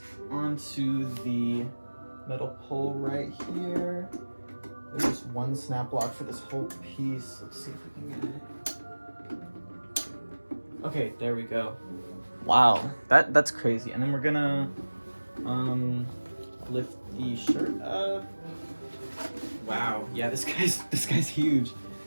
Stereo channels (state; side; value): inverted; both; correlation -1.00